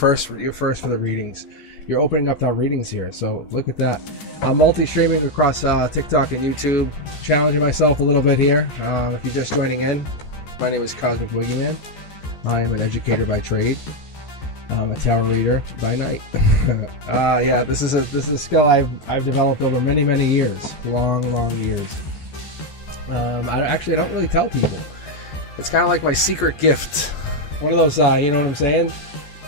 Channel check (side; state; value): right; late; 14 ms